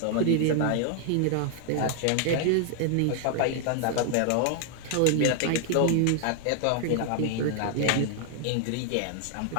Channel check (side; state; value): both; different; correlation 0.00